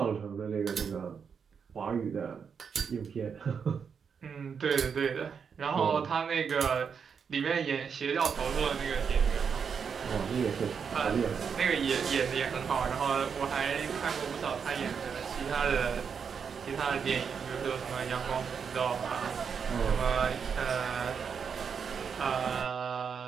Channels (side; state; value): left; quieter; 6.5 dB